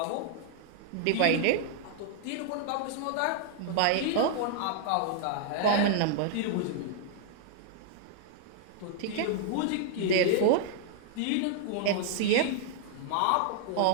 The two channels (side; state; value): both; different; correlation -0.01